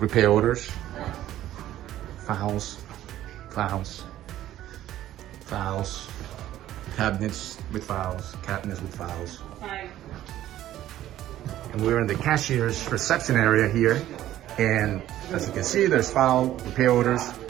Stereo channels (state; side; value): quieter; left; 13.2 dB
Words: orders, files, cabinets with files. And we're in the cashier's reception area here. And as you can see, there's file, repair orders.